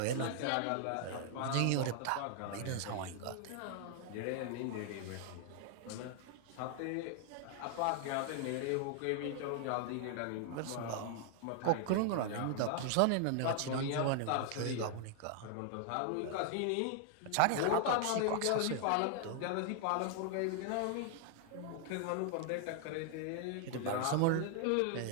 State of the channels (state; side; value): different; both; correlation 0.00